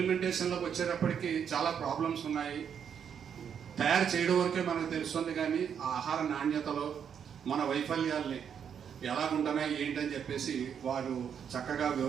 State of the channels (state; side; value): quieter; left; 7.9 dB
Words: వచ్చేటప్పటికి చాలా ప్రాబ్లమ్స్ ఉన్నాయి. తయారు చేయడం వరకే మనకు తెలుస్తుంది కానీ ఆ ఆహార నాణ్యతలో మన వైఫల్యాల్ని ఎలాగుంటున్నాయి ఏంటని చెప్పేసి వారు చక్కగా